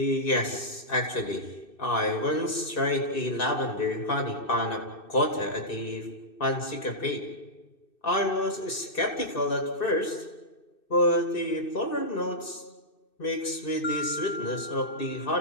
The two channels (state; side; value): late; right; 2.6 ms